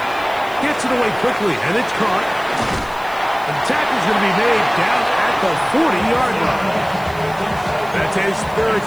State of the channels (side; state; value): left; noise; hiss, 22 dB below the sound